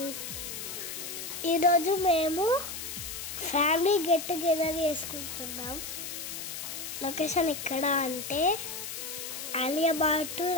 ఈరోజు మేము family get together చేసుకుంటున్నాం. Location ఎక్కడ అంటే అలియాబాద్ టు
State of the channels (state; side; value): noise; left; hiss, 7 dB below the sound